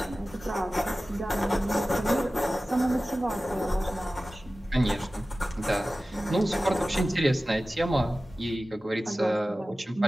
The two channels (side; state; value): both; normal; correlation 0.96